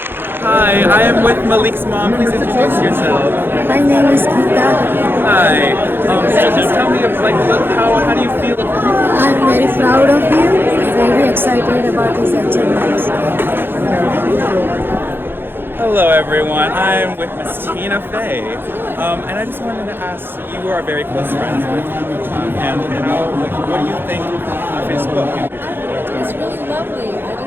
Hi, I am with Malik's mom. Please introduce yourself. My name is Geeta. Hi. Just tell me, how do you feel? I'm very proud of you. Very excited about these achievements. Hello, everyone. I'm with Miss Tina Fey, and I just wanted to ask. You are very close friends with and what do you think of his book? It's really lovely. I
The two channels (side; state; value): left; late; 0.10 ms